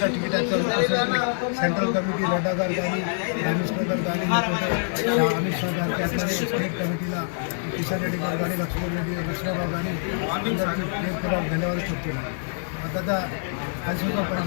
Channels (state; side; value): silent; right; 58 dB below the other